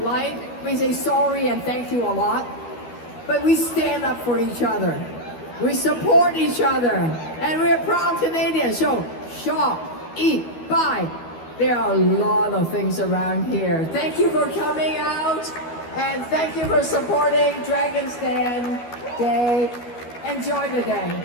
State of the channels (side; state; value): right; late; 12 ms